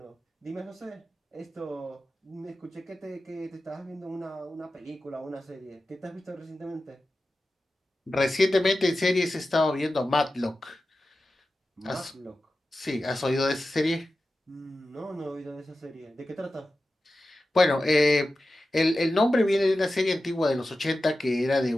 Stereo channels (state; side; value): normal; both; correlation 0.93